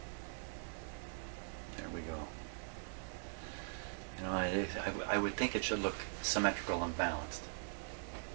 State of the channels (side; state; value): left; silent; digital silence